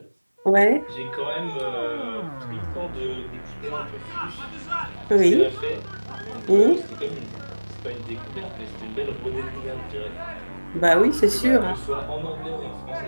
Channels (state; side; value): inverted; both; correlation -1.00